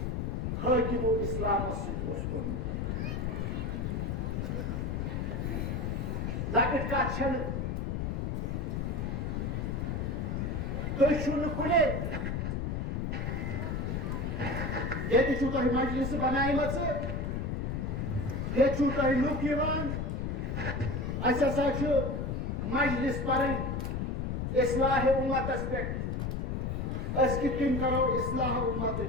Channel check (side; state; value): left; noise; rumble, 1 dB below the sound